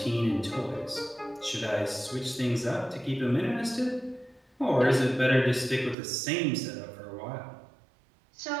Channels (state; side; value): drops out; left; at 6.0 s